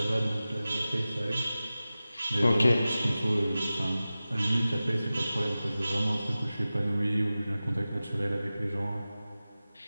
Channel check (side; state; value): both; inverted; correlation -0.95